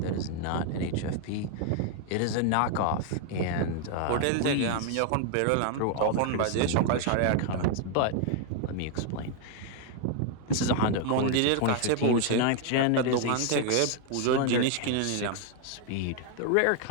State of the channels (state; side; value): different; both; correlation 0.00